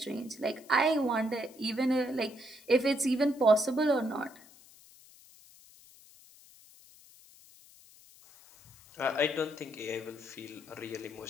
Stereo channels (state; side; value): noise; left; hiss, 24 dB below the sound